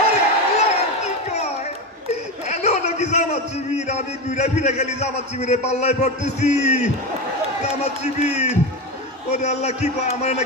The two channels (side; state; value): both; normal; correlation 0.19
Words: আরে আল্লাহ, কি কয়? এনো নাকি জামাত শিবির? আমি ঘুরে ফিরে গেলি জামাত শিবিরে পাল্লায় পড়তেছি। জামাত শিবির, ওরে আল্লাহ, কি কয়? আমার